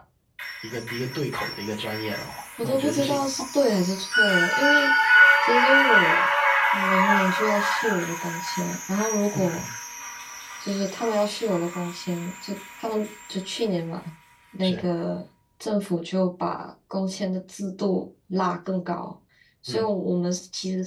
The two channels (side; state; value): both; identical; correlation 1.00